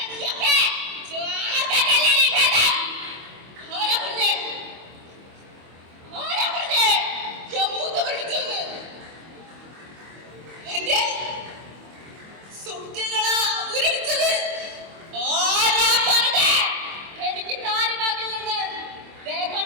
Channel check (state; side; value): late; left; 25 ms